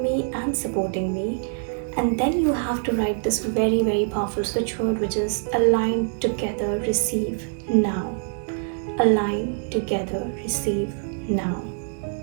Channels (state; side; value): silent; left; 62 dB below the other